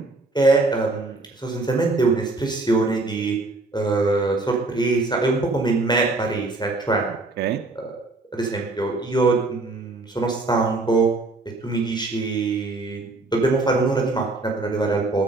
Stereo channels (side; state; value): left; quieter; 3.1 dB